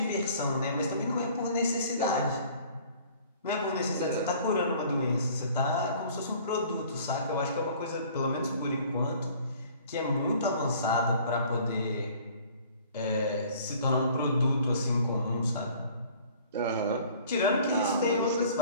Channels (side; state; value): both; inverted; correlation -0.52